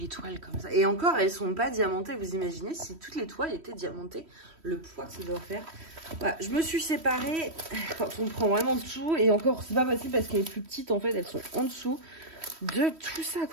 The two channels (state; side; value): late; left; 3.1 ms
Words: toiles comme ça. Et encore, elles sont pas diamantées. Vous imaginez si toutes les toiles étaient diamantées, le poids que ça doit faire. Voilà, je me suis séparée quand on prend vraiment tout. Et encore, c'est pas possible parce qu'elles sont plus petites en fait. Elles sont en dessous de tout ça